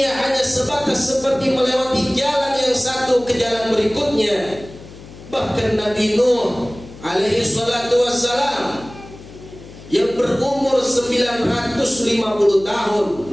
hanya sebatas seperti melewati jalan yang satu ke jalan berikutnya. Bahkan Nabi Nuh alaihi salatu wassalam yang berumur 950 tahun,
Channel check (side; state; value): left; noise; hum, 18 dB below the sound